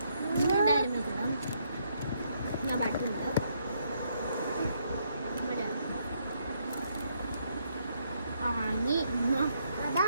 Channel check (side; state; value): both; inverted; correlation -0.74